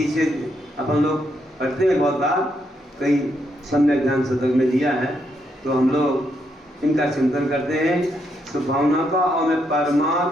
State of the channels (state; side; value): normal; both; correlation 0.78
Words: अपन लोग पढ़ते हैं बहुत बार, कई सम्यक ज्ञान शतक में दिया है, तो हम लोग इनका चिंतन करते हैं शुभ भावना का। और मैं